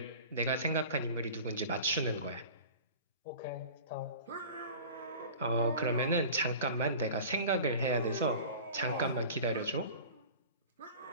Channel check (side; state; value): both; inverted; correlation -0.39